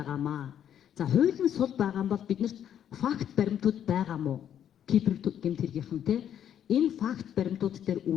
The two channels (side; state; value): right; quieter; 9.8 dB